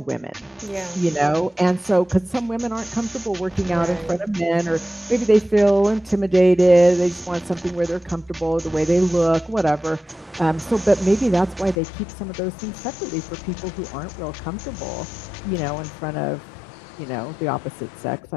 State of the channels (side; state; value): right; drops out; at 11.8 s